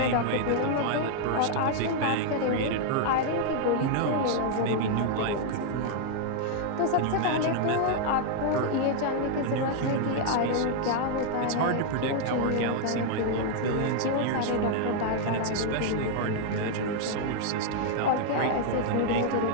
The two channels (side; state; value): both; different; correlation 0.00